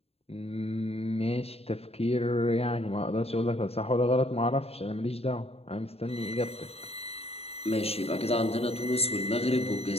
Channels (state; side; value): late; right; 0.29 ms